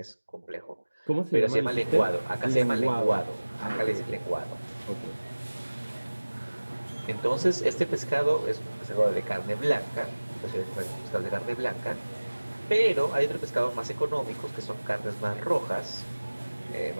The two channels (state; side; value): inverted; both; correlation -1.00